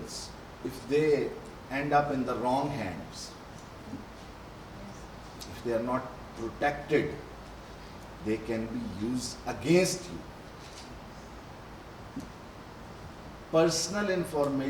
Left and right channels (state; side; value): identical; both; correlation 1.00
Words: if they end up in the wrong hands, if they are not protected, they can be used against you. Personal